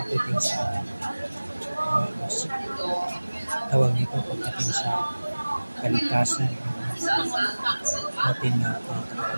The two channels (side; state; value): both; inverted; correlation -1.00